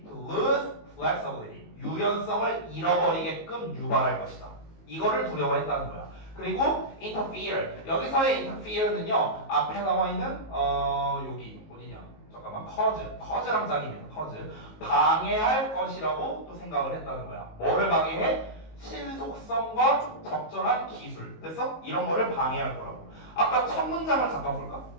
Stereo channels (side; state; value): right; late; 19 ms